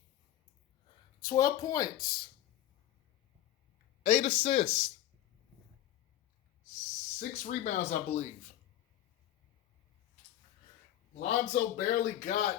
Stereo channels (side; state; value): right; quieter; 12.8 dB